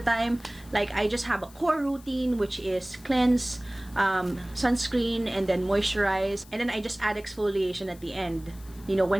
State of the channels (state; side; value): noise; left; hiss, 23 dB below the sound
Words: Like, I just have a core routine, which is cleanse, sunscreen, and then moisturize. And then I just add exfoliation at the end, you know,